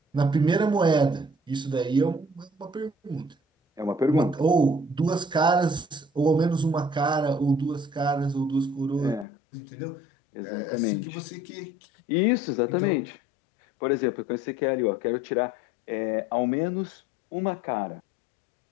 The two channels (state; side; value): drops out; right; at 9.2 s